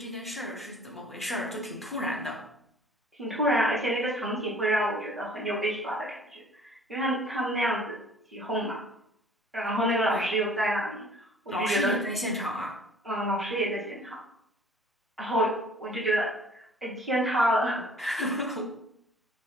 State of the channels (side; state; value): both; normal; correlation 0.51